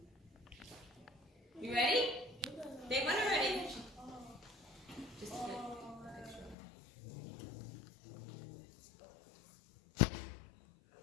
You ready? They went already. Just a bit.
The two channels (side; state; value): right; drops out; at 6.6 s